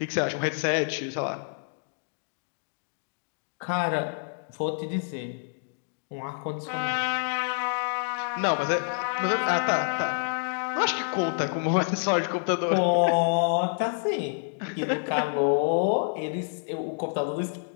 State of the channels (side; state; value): right; silent; digital silence